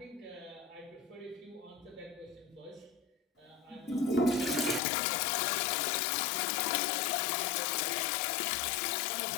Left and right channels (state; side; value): drops out; right; at 4.8 s